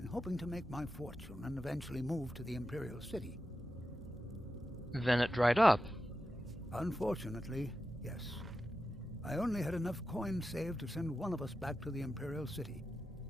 hoping to make my fortune and eventually move to the Imperial City. Then it dried up. Unfortunately, yes. I only had enough coins saved to send one of us back to the Imperial City.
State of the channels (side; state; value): both; normal; correlation 0.91